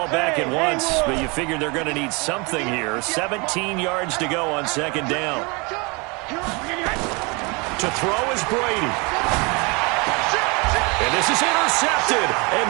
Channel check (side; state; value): left; quieter; 29.0 dB